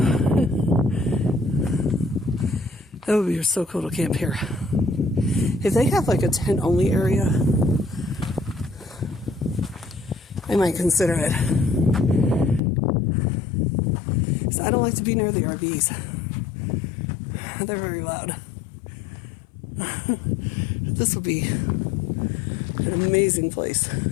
That would be so cool to camp here. If they have like a tent only area, I might consider it. So I don't like to be near the RVs. They're very loud. This will be an amazing place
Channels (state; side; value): drops out; right; at 12.6 s